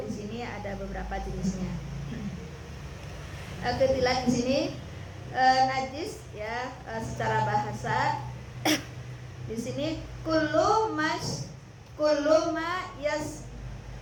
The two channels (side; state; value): both; identical; correlation 1.00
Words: di sini ada beberapa jenisnya. Ketilang di sini najis ya, secara bahasa di sini kullu ma